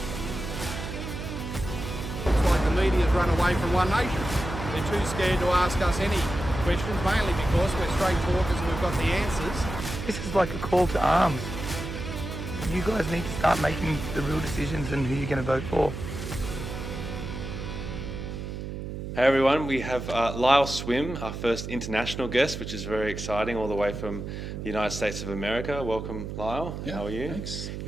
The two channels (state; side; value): noise; right; hum, 7 dB below the sound